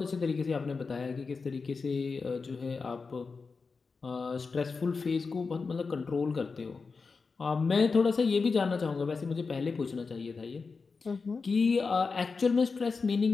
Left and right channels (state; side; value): quieter; right; 4.6 dB